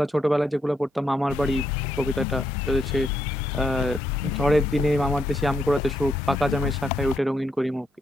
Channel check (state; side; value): normal; both; correlation 0.77